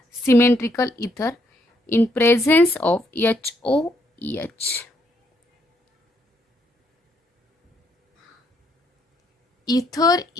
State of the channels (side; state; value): both; normal; correlation 0.72